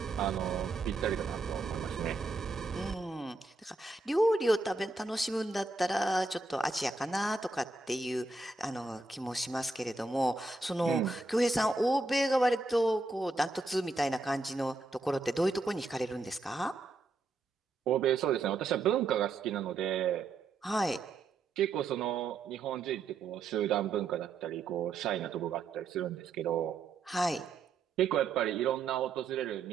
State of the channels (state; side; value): quieter; left; 3.6 dB